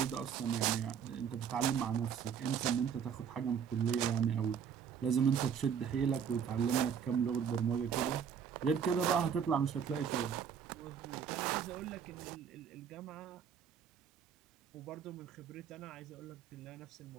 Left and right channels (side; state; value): left; quieter; 7.5 dB